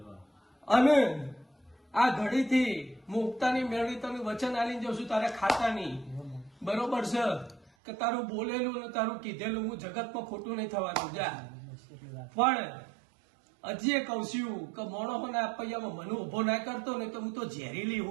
અને આ ઘડીથી મુક્તાની મેળવી તને વચન આલીને જઉં છું તારા ખાતાની બરોબર છે કે તારું બોલેલું ને તારું કીધેલું હું જગતમાં ખોટું નહીં થવાનું જા પણ હજી એ કહું છું કે મોણોના આપૈયામાં મને ઉભો ના કરતો ને તો હું તો ઝેરીલી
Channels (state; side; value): drops out; left; at 7.7 s